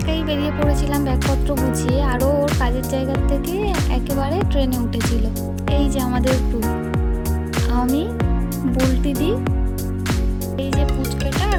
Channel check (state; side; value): identical; both; correlation 1.00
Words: বেরিয়ে পড়েছিলাম ব্যাগপত্র গুছিয়ে, আরও ওর কাজের জায়গার থেকে একেবারে ট্রেনে উঠেছিল। এই যে আমাদের গ্রুপ, আমি, বুলটি দি, এই যে পুচকেটা